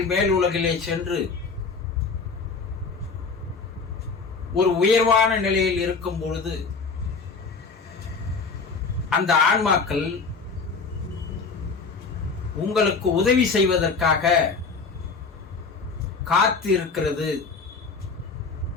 மேல் உலகிலே சென்று ஒரு உயர்வான நிலையில் இருக்கும் பொழுது அந்த ஆன்மாக்கள் உங்களுக்கு உதவி செய்வதற்காக காத்து இருக்கிறது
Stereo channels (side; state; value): right; quieter; 4.7 dB